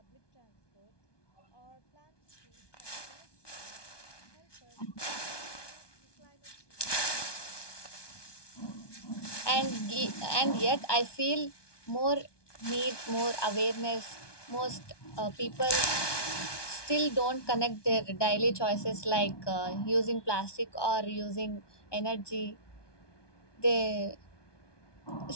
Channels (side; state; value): right; late; 1.2 ms